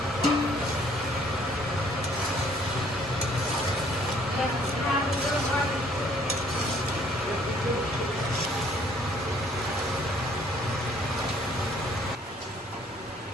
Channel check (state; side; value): normal; both; correlation 0.60